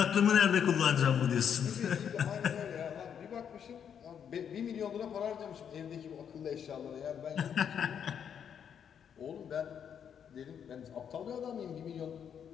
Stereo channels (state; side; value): quieter; right; 8.1 dB